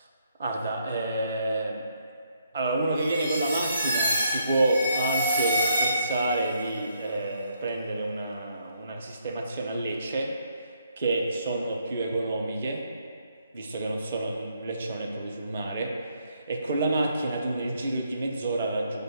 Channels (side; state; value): both; inverted; correlation -0.73